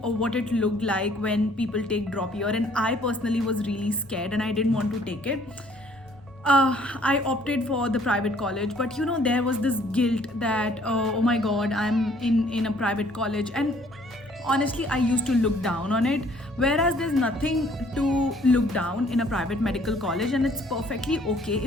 what it looked like when people take drop year, and I personally was really scared and I didn't want to take it. I opted for the private college, but there was this guilt that oh my god, I'm in a private college, and honestly I used to look down on it, whereas there's nothing to look down in a private medical college, and it's perfectly okay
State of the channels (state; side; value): normal; both; correlation 0.60